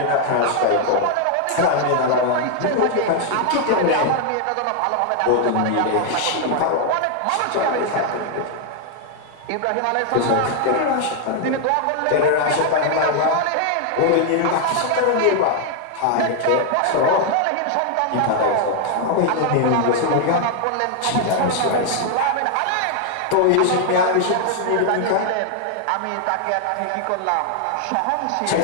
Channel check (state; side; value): different; both; correlation 0.00